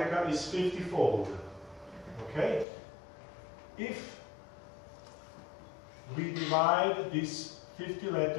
is 50-fold. Okay? If we divide these 50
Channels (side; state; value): right; drops out; at 2.7 s